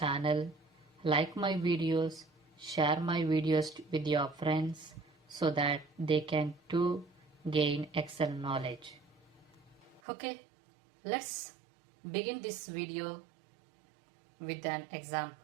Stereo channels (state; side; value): drops out; left; at 10.0 s